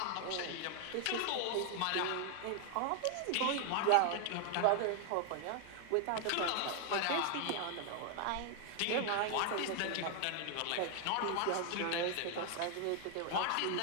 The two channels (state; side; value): different; both; correlation 0.00